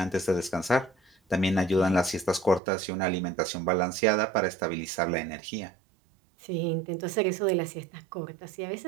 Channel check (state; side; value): drops out; left; at 2.6 s